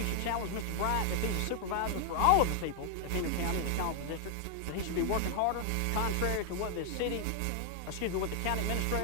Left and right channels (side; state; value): both; different; correlation 0.00